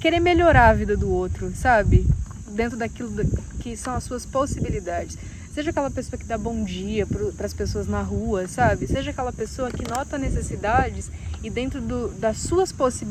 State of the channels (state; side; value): identical; both; correlation 1.00